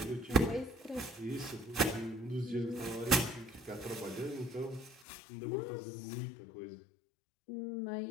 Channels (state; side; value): drops out; right; at 5.1 s